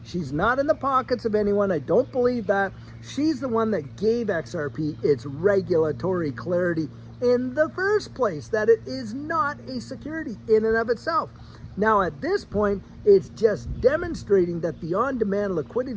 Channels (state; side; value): identical; both; correlation 1.00